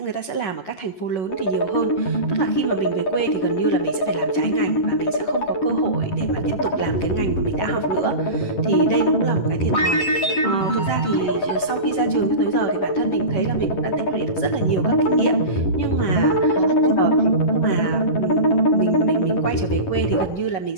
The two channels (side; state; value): right; late; 11 ms